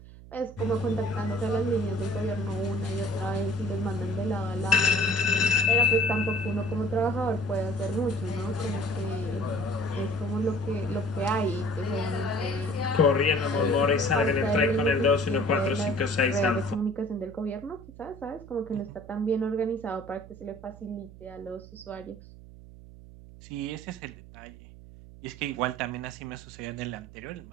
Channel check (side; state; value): right; noise; hum, 18 dB below the sound